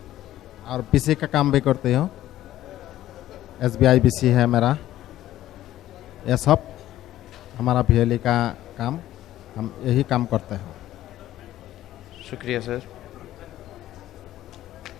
और BC का काम भी करती हूँ। SBI BC है मेरा। ये सब हमारा BLA का काम हम यही काम करते हैं। शुक्रिया सर।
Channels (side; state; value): right; quieter; 13.7 dB